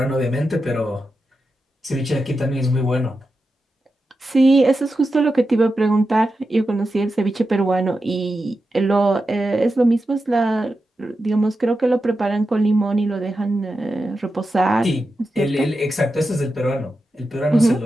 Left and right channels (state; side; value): normal; both; correlation 0.90